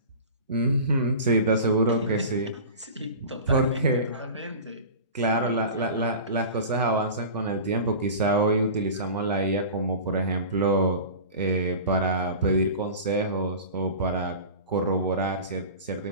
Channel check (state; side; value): inverted; both; correlation -0.35